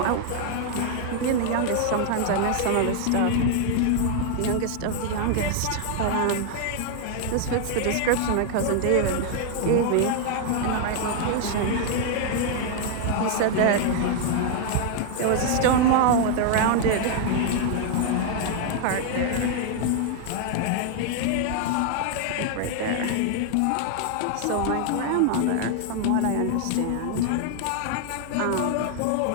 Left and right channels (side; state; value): both; different; correlation 0.00